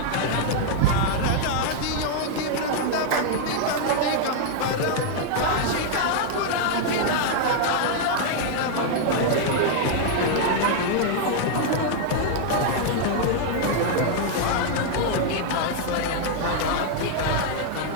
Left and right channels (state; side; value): different; both; correlation 0.00